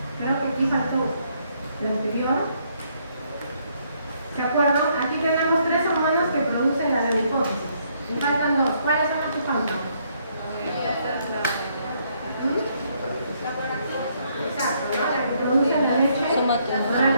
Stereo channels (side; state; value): both; inverted; correlation -0.71